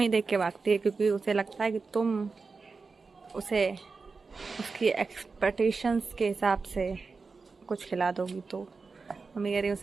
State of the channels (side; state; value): left; quieter; 4.4 dB